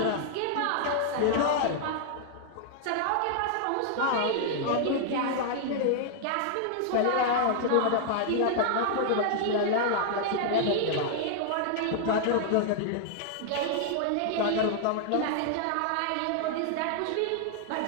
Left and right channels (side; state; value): both; different; correlation -0.01